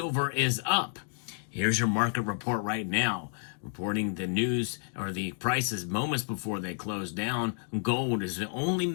is up. Here's your market report right now, reporting the news or the prices moments before they close down. Gold is the only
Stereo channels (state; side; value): silent; right; 58 dB below the other